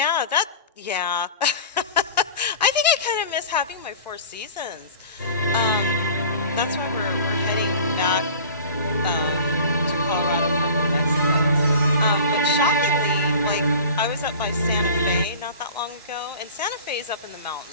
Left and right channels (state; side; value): inverted; both; correlation -0.40